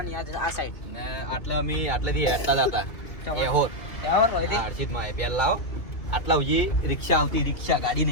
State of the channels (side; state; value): right; late; 2.7 ms